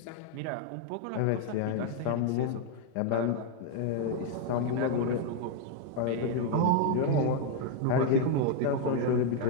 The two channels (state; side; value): different; both; correlation 0.00